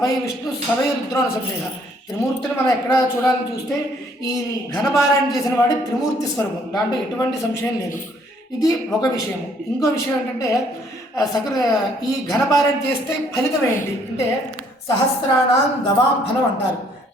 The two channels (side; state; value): both; normal; correlation 0.64